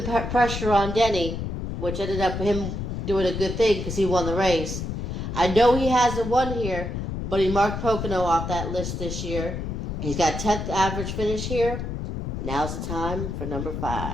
pressure on Denny, which ended up him doing a good thing because he won the race. I know he hasn't won here, but he marked Pocono off that list this year. He's got 10th average finish here. Now's the time for number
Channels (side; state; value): left; noise; rumble, 4 dB below the sound